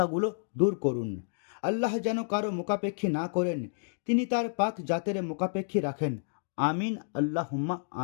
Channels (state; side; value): silent; right; digital silence